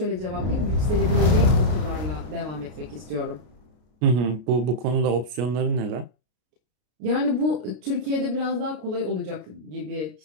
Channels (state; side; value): late; left; 33 ms